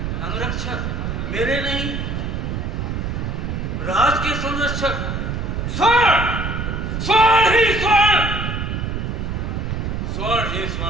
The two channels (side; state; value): right; noise; rumble, 2 dB below the sound